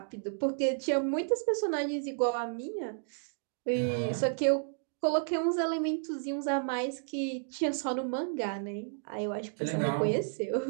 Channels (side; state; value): left; silent; digital silence